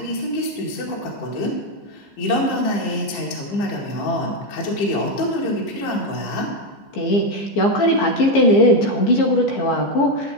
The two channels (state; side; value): late; right; 15 ms